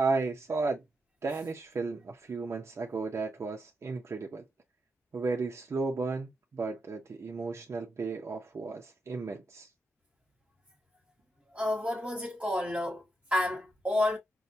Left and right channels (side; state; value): both; normal; correlation 0.84